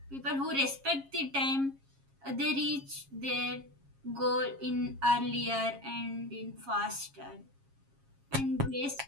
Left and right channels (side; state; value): left; late; 7.3 ms